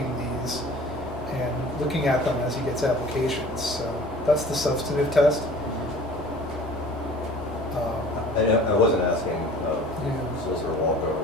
these and looking at them as he gets applications. So that's the substantive test. I wasn't asking Solicitor Walker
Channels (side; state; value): both; normal; correlation 0.45